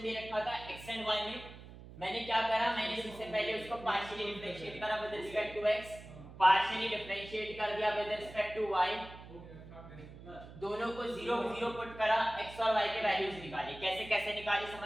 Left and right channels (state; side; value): noise; right; hum, 16 dB below the sound